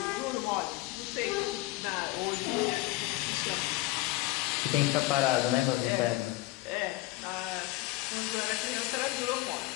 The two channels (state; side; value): quieter; right; 19.2 dB